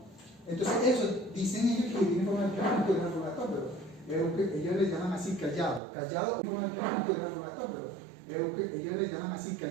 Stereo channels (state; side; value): drops out; left; at 5.8 s